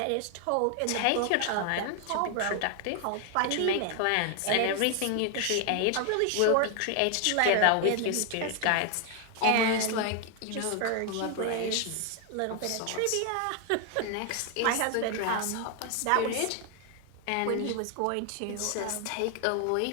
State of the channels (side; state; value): both; different; correlation 0.00